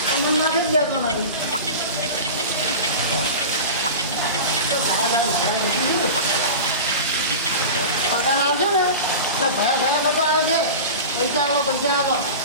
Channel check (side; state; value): both; inverted; correlation -0.30